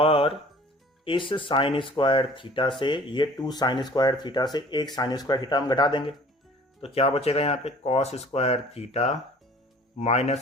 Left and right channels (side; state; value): both; normal; correlation 0.49